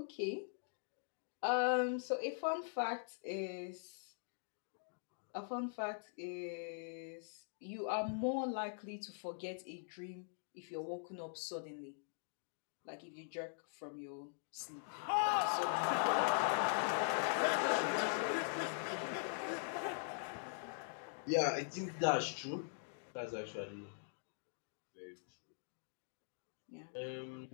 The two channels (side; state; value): right; silent; digital silence